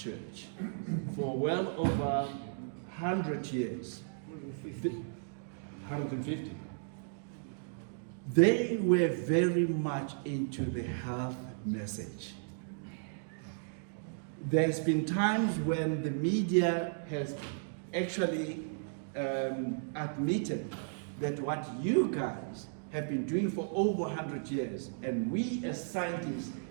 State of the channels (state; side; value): silent; left; digital silence